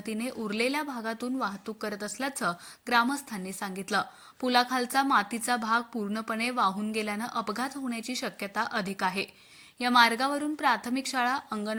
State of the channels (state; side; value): identical; both; correlation 1.00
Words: उरलेल्या भागातून वाहतूक करत असल्याचं ग्रामस्थांनी सांगितलं। पुलाखालचा मातीचा भाग पूर्णपणे वाहून गेल्यानं अपघात होण्याची शक्यता अधिक आहे। या मार्गावरून प्राथमिक शाळा,